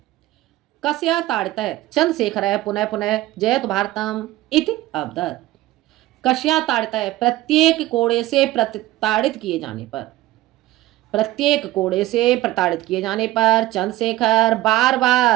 कस्या ताड़ितः चंद्रशेखर पुनः पुनः जयतु भारतम इति अवदत्। कस्या ताड़ितः? प्रत्येक कोड़े से प्रताड़ित किए जाने पर, प्रत्येक कोड़े से प्रताड़ित किए जाने पर चंद्रशेखर बार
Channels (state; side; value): quieter; left; 16.5 dB